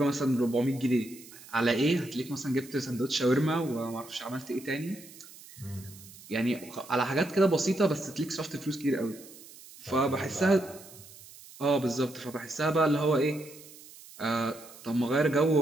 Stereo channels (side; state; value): right; noise; hiss, 19 dB below the sound